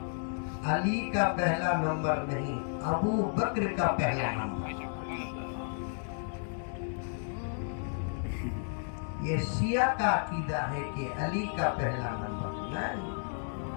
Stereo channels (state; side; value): silent; right; 56 dB below the other